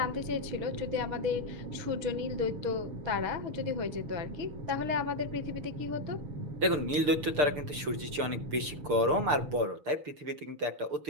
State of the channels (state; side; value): late; left; 6.7 ms